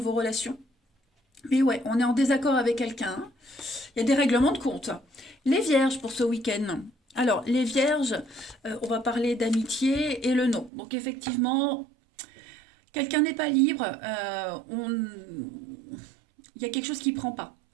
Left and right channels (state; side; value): drops out; left; at 10.7 s